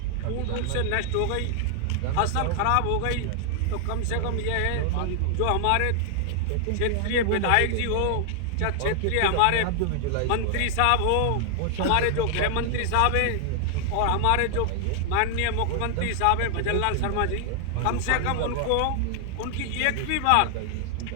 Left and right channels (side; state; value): both; different; correlation 0.00